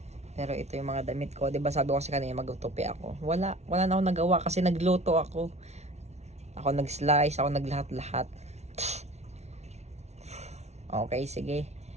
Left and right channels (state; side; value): late; left; 0.32 ms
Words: Pero ito yung mga damit ko. 'Di ba sabi ko kasi kanina magtutupi ako. Wala na ako nagawa kasi nagluto ako. Ako nag-slice, ako naglahat-lahat. Okay, sige.